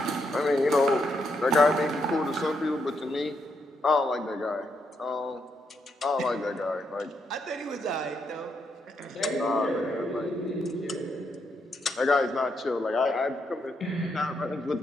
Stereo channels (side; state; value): both; normal; correlation 0.79